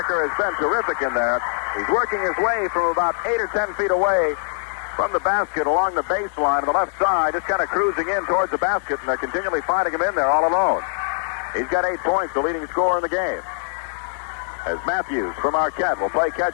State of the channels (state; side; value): silent; right; 62 dB below the other